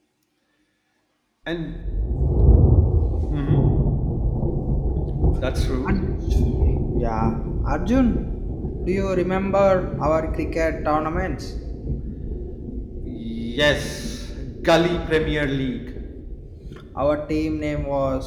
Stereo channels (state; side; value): identical; both; correlation 1.00